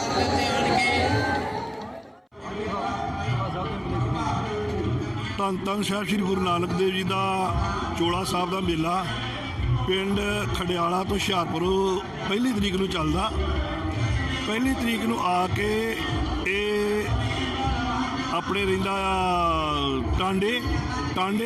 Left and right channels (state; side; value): identical; both; correlation 1.00